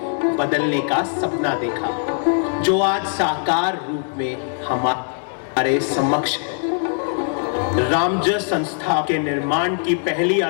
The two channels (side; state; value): right; silent; 63 dB below the other